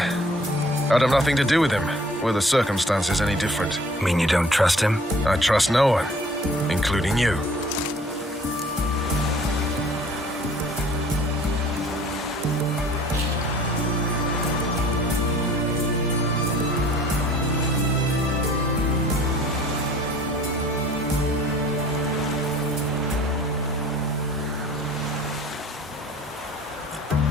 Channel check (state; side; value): normal; both; correlation 0.51